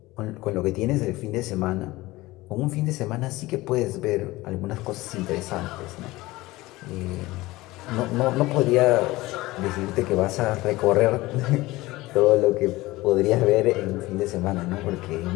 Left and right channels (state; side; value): quieter; right; 19.4 dB